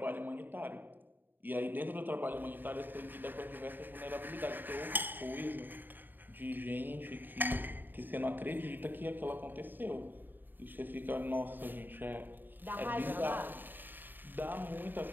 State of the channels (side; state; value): left; late; 0.092 ms